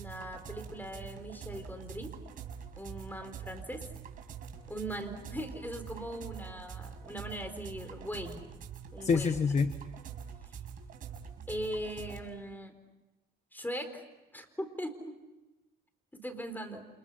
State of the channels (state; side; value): normal; both; correlation 0.70